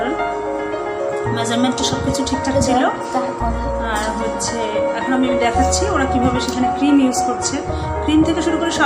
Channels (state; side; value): identical; both; correlation 1.00